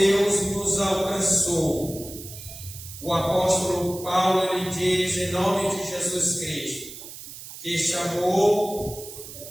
nos alcançou. O apóstolo Paulo, ele diz em nome de Jesus Cristo, que este amor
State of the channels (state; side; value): noise; right; hiss, 13 dB below the sound